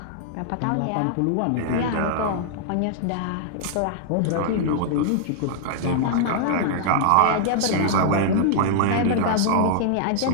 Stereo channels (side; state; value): both; different; correlation -0.01